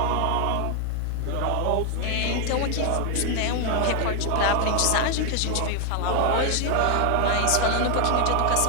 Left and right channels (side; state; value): both; different; correlation 0.00